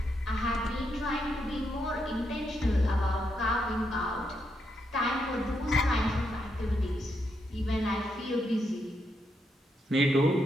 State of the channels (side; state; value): both; normal; correlation 0.80